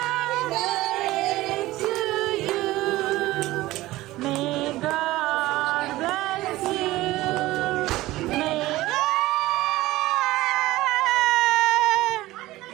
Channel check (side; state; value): left; quieter; 17.5 dB